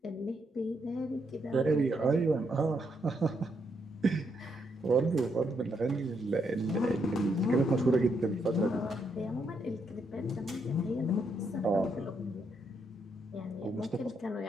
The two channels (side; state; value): both; normal; correlation 0.78